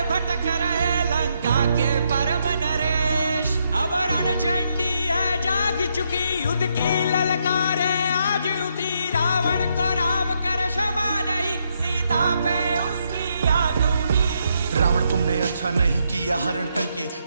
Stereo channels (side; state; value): both; inverted; correlation -0.77